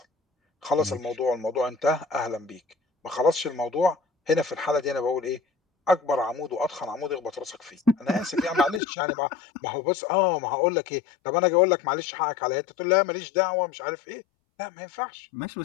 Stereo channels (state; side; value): drops out; right; at 8.8 s